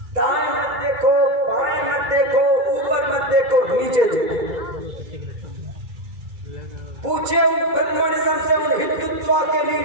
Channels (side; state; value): left; late; 2.3 ms